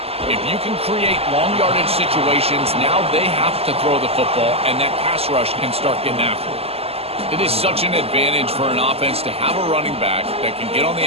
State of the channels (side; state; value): left; late; 0.29 ms